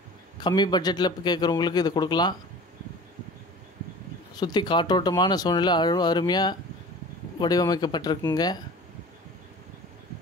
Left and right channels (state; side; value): normal; both; correlation 0.41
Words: கம்மி பட்ஜெட்டில் கேட்குறவங்களுக்கு இது கொடுக்கலாம். சுற்றி காற்றோட்டமான சூழ்நிலை அருமையாக வடிவமைக்கப்பட்டிருக்குங்க.